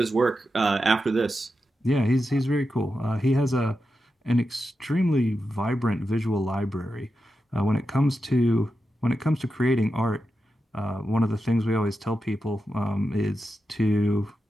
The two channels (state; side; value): normal; both; correlation 0.89